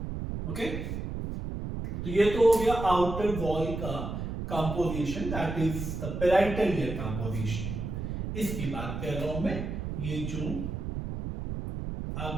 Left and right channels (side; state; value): right; noise; rumble, 5 dB below the sound